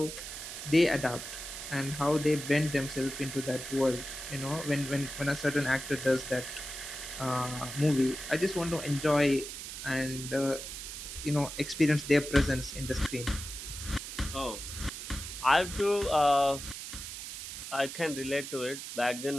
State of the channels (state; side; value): noise; right; hiss, 8 dB below the sound